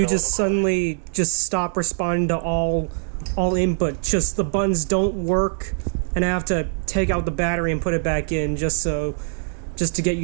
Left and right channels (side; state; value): left; silent; digital silence